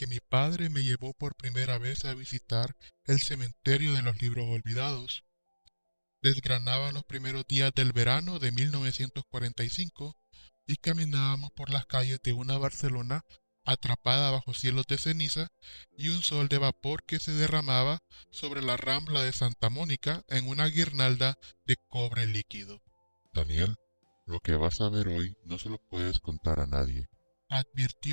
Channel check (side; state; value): both; inverted; correlation -1.00